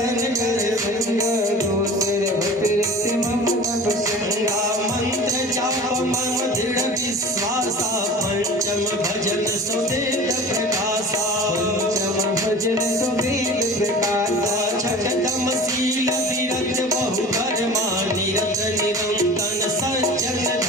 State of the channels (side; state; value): both; normal; correlation 0.39